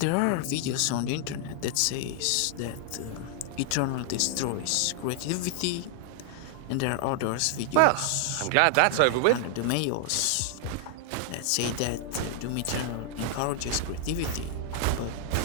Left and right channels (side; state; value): both; different; correlation 0.00